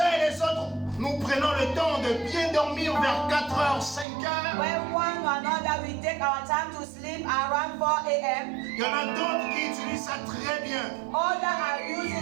et les autres, nous prenons le temps de bien dormir vers 4h, 5h. When one or another we take our time to sleep around 4 a.m. Il y en a d'autres qui utilisent ça très bien. Others are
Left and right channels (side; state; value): left; drops out; at 4.0 s